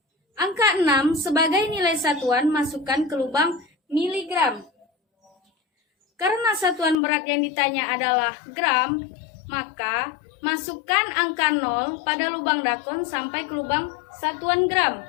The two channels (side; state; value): right; drops out; at 7.0 s